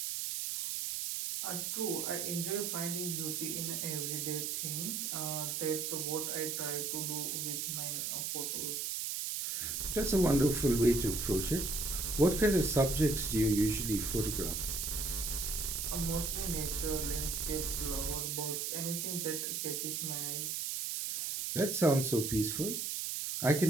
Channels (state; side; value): noise; right; hiss, 2 dB below the sound